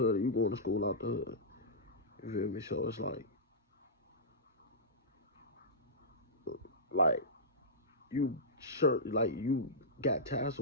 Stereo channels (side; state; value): both; normal; correlation -0.15